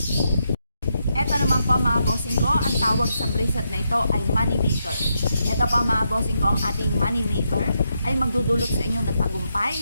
Ito naman po mga bossing ko, ang tawag sa bracelet na ito ay money maker. Ito po mga bossing ko, ang ating money maker ay magdudulot sa inyo ng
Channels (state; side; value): inverted; both; correlation -0.81